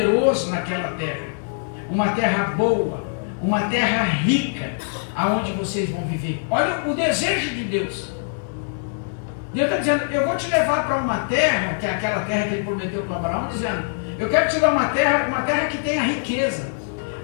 naquela terra, uma terra boa, uma terra rica, aonde vocês vão viver. Olha o desejo de Deus. Deus está dizendo, eu vou te levar para uma terra, que é aquela terra que ele prometeu para Abraão, dizendo, eu quero te dar uma terra que tenha riqueza,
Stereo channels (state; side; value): silent; right; digital silence